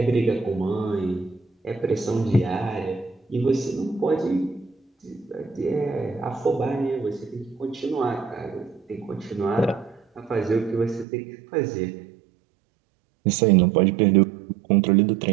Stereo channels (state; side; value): drops out; left; at 11.1 s